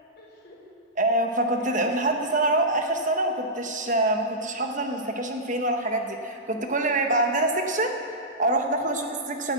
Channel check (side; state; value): both; normal; correlation -0.13